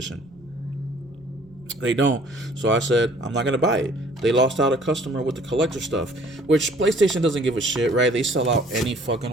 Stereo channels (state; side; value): noise; right; rumble, 28 dB below the sound